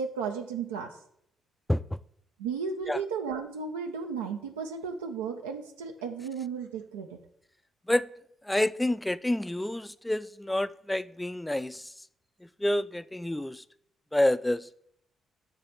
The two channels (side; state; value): both; normal; correlation 0.83